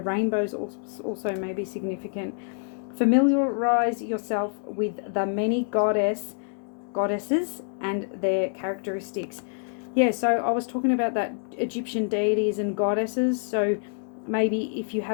also may be significant. Familiarize yourself with the many goddesses and their characteristics. Yeah, so I was talking about that Egyptian deities and goddesses. So maybe if you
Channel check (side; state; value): right; silent; digital silence